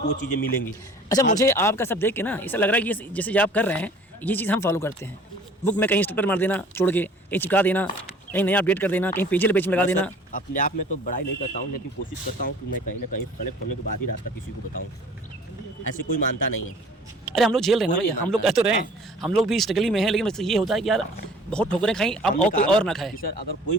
वो चीज़ें मिलेंगी। अच्छा, मुझे आपका सब देख के ना ऐसा लग रहा है कि जैसे आप कर रहे हैं ये चीज़ हम फॉलो करते हैं। बुक में कहीं स्टिकर मार देना, छोड़ के कहीं चिपका देना, कहीं नया अपडेट कर देना, कहीं पेज में लगा देना। अपने आप में तो बड़ाई नहीं करता हूँ, लेकिन कोशिश करता हूँ कि मैं कहीं ना कहीं कलेक्ट होने के बाद ही रास्ता किसी को बताऊँ। ऐसे कोई मानता नहीं है। अरे हम लोग झेल रहे हैं ना भैया, हम लोग कह तो रहे हैं, हम लोग भी स्ट्रगल में हैं, लेकिन ये होता है कि यार बहुत ठोकरें खाई, अब और कोई और ना खाए। सर अगर कोई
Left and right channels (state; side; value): normal; both; correlation 0.49